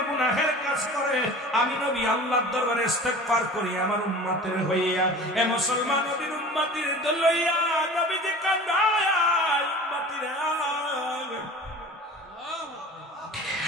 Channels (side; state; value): both; normal; correlation 0.40